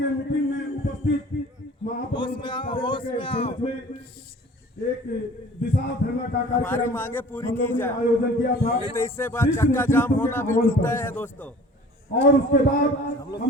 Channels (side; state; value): both; normal; correlation 0.46